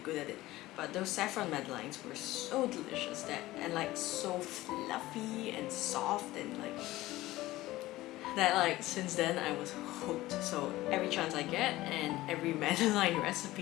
at it. But those saffron Madeleines were so delicious and like so fluffy and soft and like since then I was hooked. So every chance I get and every Madeleine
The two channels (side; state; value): right; quieter; 17.3 dB